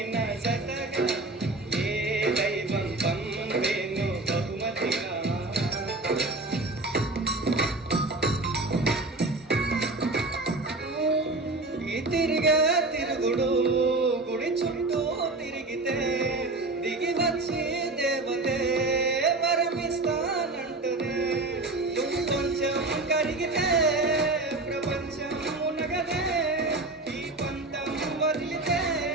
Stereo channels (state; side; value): quieter; left; 3.0 dB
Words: నా జతగా ఏ దైవం పంపేను బహుమతిగా తిరుగుడు గుడి చుట్టూ తిరిగితే దిగి వచ్చి దేవతే వరమిస్తానంటనే నువ్వు కొంచెం కరిగితే ప్రపంచం మునగదే ఈ పంతం వదిలితే